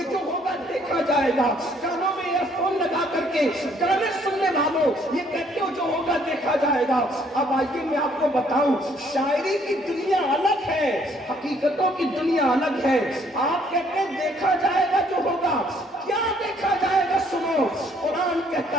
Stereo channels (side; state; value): both; normal; correlation 0.64